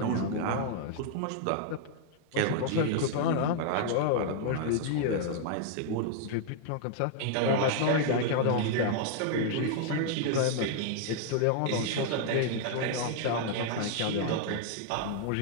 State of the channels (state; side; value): different; both; correlation -0.01